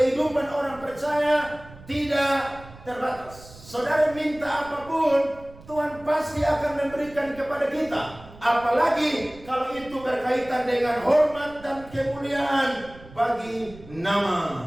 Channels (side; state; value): right; noise; rumble, 20 dB below the sound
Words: orang percaya tidak terbatas. Saudara minta apapun, Tuhan pasti akan memberikan kepada kita. Apalagi kalau itu berkaitan dengan hormat dan kemuliaan bagi nama